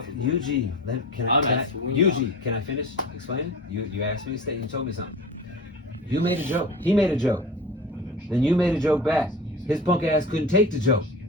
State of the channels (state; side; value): normal; both; correlation 0.35